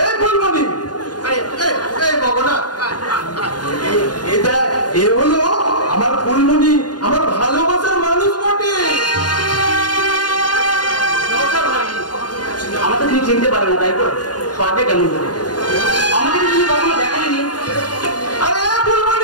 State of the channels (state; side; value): late; right; 0.69 ms